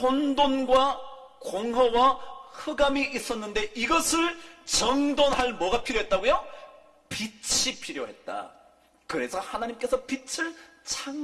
공허와 흑암이 있었는데 이것을 정돈할 뭐가 필요했다고요? 빛이 필요했다. 그래서 하나님께서 빛을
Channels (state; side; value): identical; both; correlation 1.00